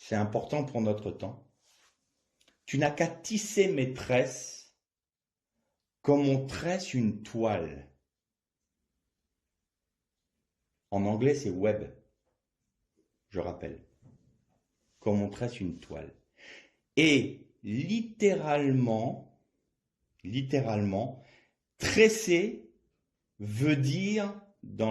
important pour notre temps. Tu n'as qu'à tisser mes tresses comme on tresse une toile. En anglais, c'est web. Je rappelle. Comme on tresse une toile. Et littéralement, tresser veut dire,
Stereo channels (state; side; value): identical; both; correlation 1.00